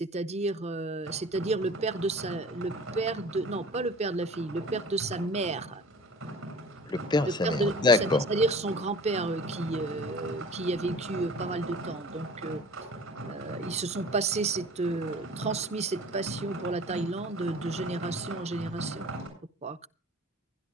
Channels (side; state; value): both; normal; correlation 0.43